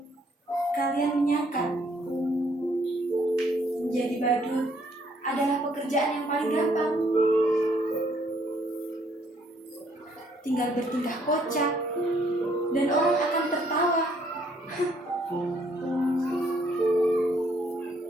kalian menyangka menjadi badut adalah pekerjaan yang paling gampang. Tinggal bertingkah kocak dan orang akan tertawa.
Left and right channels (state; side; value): normal; both; correlation 0.66